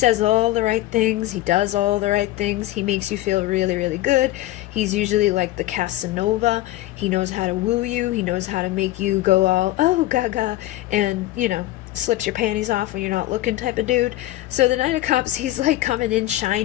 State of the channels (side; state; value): right; quieter; 15.9 dB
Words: all the right things. He does all the right things. He makes you feel really, really good. He's usually like the Casanova. He knows how to woo you. He knows how to make you go all, oh, gaga, and, slips your panties off when you're not looking type of dude. So the Knight of Cups, he's like coming in